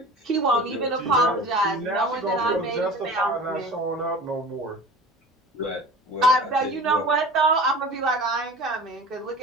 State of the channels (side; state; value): both; normal; correlation 0.38